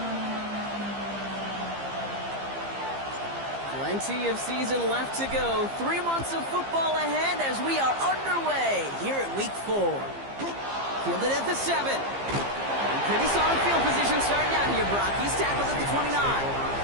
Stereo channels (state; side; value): late; left; 15 ms